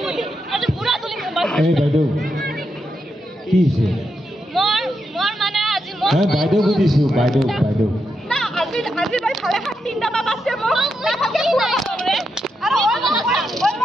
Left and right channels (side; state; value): both; normal; correlation 0.84